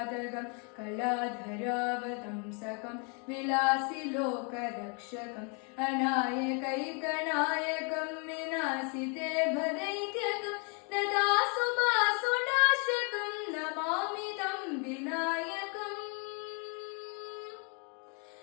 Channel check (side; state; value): right; quieter; 36.6 dB